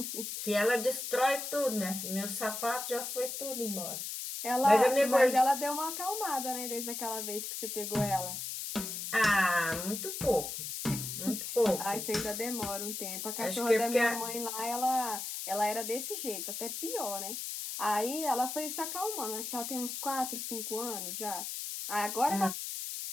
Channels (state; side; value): noise; left; hiss, 5 dB below the sound